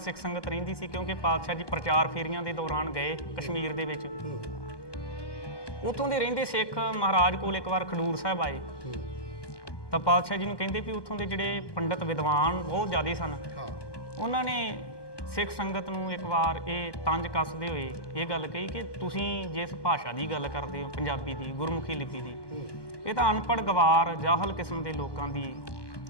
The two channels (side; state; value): right; late; 1.2 ms